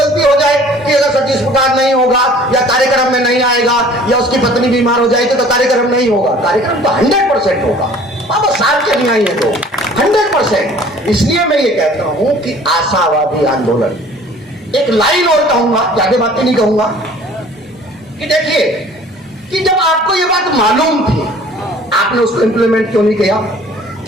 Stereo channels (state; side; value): normal; both; correlation 0.50